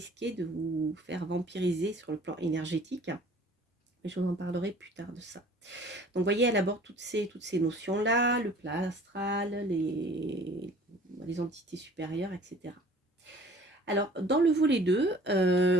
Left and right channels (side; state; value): both; normal; correlation 0.50